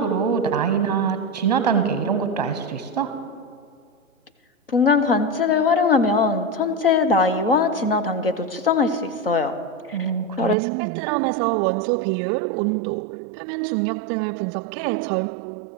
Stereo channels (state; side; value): drops out; left; at 10.6 s